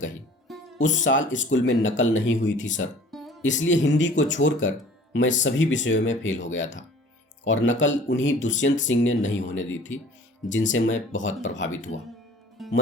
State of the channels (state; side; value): normal; both; correlation 0.49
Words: उस साल स्कूल में नकल नहीं हुई थी सर, इसलिए हिंदी को छोड़कर मैं सभी विषयों में फेल हो गया था, और नकल उन्हीं दुष्यंत सिंह ने नहीं होने दी थी, जिनसे मैं बहुत प्रभावित हुआ।